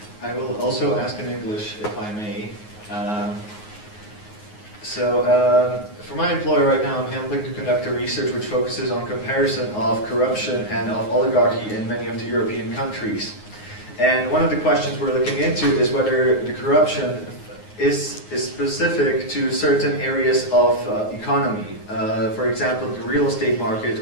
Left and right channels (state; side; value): late; right; 9.5 ms